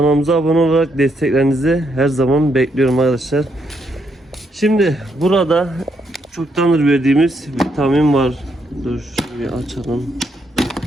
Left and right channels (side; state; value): both; normal; correlation 0.76